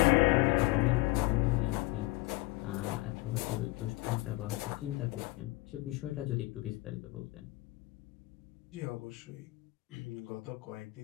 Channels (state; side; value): quieter; right; 21.6 dB